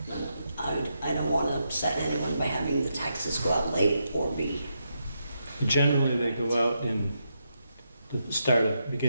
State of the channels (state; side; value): inverted; both; correlation -0.83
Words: I don't wanna upset anyone by having the taxes go out late or be, Generally, they go out in the